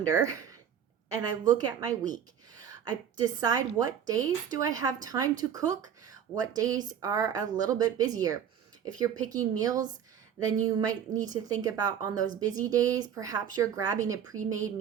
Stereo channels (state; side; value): quieter; left; 8.7 dB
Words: and I look at my week. I decide what days do I have time to cook, what days are a little bit busier. If you're picking meals, then you might need to think about on those busy days, perhaps you're grabbing a pre-made